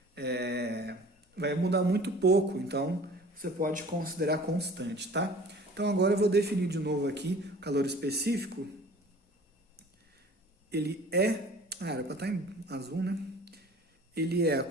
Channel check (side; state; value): both; normal; correlation 0.46